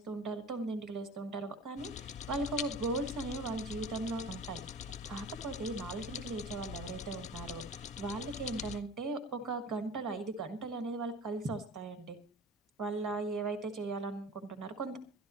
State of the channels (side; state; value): both; normal; correlation 0.39